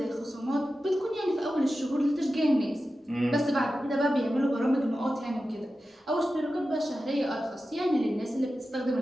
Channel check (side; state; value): both; normal; correlation 0.93